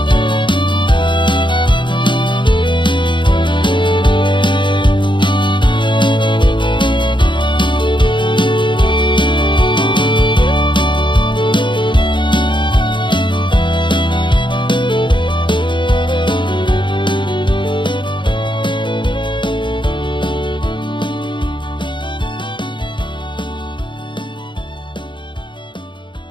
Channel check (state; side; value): late; right; 0.23 ms